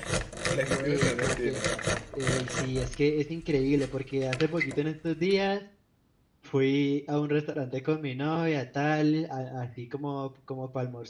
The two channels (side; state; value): both; identical; correlation 1.00